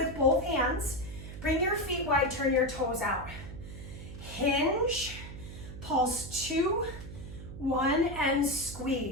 both hands. Bring your feet wide, turn your toes out. Hinge, pulse 2, 1, and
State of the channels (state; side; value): noise; right; hum, 12 dB below the sound